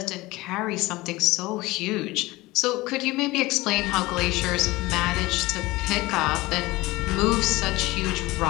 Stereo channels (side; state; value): right; quieter; 20.3 dB